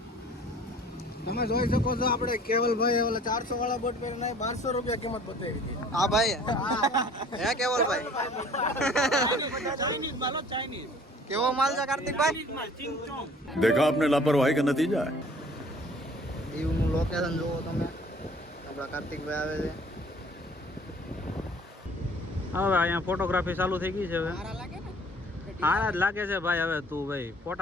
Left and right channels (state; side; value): normal; both; correlation 0.52